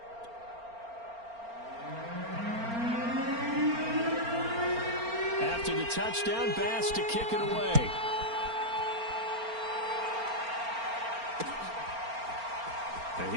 After the touchdown, Bass to kick it away. And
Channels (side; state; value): left; late; 4.4 ms